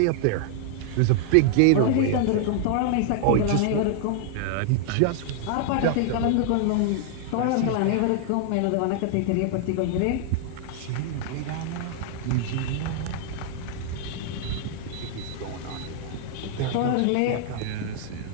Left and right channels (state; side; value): different; both; correlation 0.00